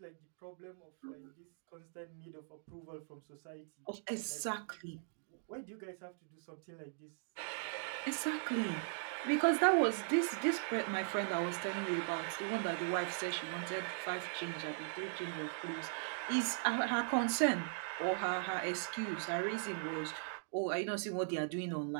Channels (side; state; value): left; silent; digital silence